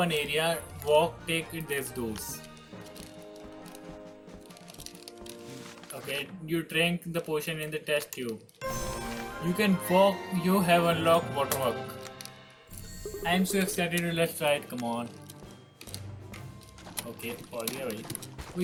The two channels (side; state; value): both; identical; correlation 1.00